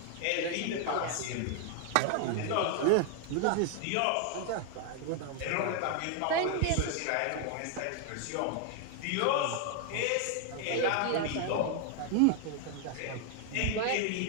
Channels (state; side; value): different; both; correlation 0.00